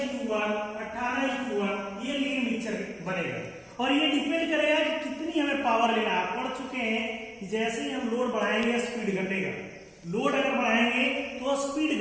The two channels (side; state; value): both; identical; correlation 1.00